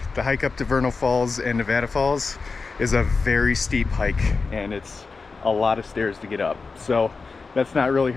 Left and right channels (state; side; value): quieter; right; 4.4 dB